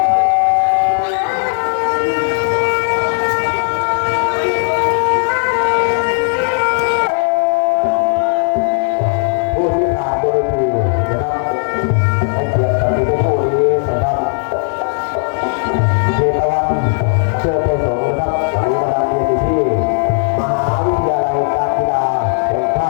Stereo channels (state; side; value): silent; right; digital silence